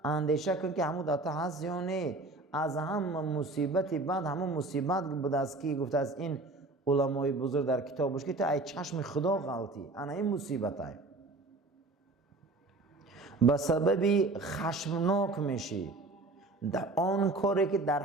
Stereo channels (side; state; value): left; quieter; 3.0 dB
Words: اندیشه کن که همون داتا هست یا نه. از همه مصیبتی بعد همون مصیبت بود است که گفته از این علمای بزرگ در کتابش که تو ای چشم خدا غلطی. انا این مصیبت های به سببی خشمناک میشی در آن کاری که در